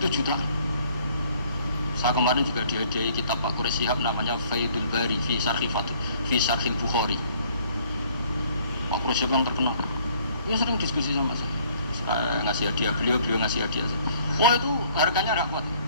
jutaan. Saya kemarin juga dihadiahi kitab Pak Quraish Shihab namanya Faidul Bari fi Syarhil Bukhari. Pak Quraish Shihab yang terkenal. Dia sering diskusi sama saya. Saya ngasih hadiah beliau ngasih hadiah saya. Wah itu harganya tidak kuat.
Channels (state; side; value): inverted; both; correlation -0.59